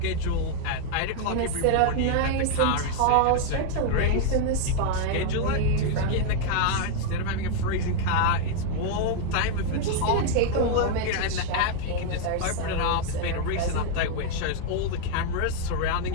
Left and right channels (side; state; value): both; different; correlation 0.00